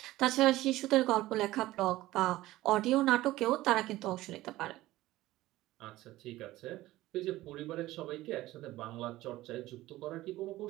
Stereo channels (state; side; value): quieter; left; 16.8 dB